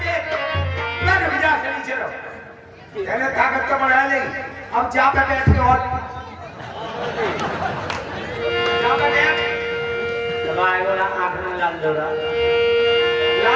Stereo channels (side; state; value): both; identical; correlation 1.00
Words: मैं ताकत तो बढ़ा नहीं अब जा पे बैठ के और जा पे बैठ आएगो ना आंख में लाल दौड़ा